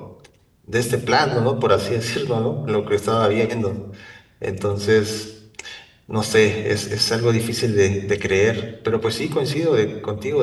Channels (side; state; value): both; identical; correlation 1.00